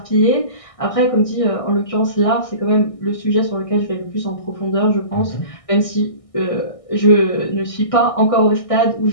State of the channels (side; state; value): right; late; 1.6 ms